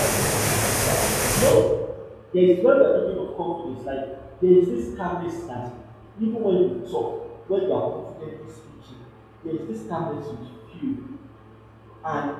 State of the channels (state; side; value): identical; both; correlation 1.00